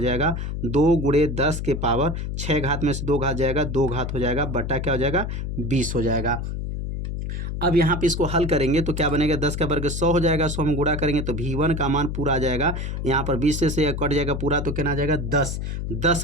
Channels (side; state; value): left; noise; hum, 4 dB below the sound